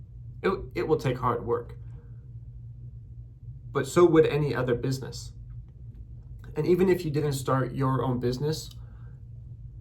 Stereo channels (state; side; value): identical; both; correlation 1.00